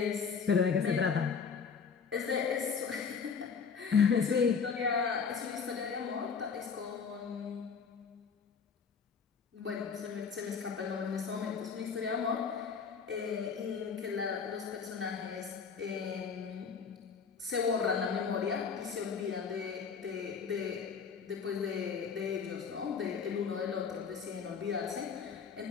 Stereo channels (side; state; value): right; quieter; 6.1 dB